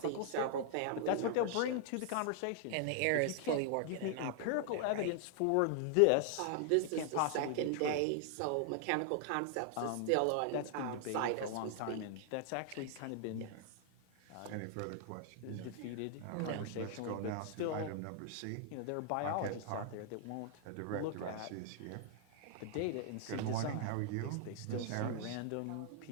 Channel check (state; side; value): different; both; correlation 0.00